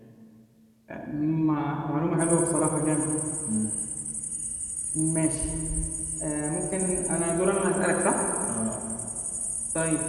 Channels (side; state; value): both; identical; correlation 1.00